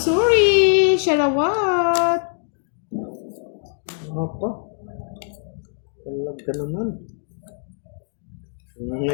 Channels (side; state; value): right; silent; digital silence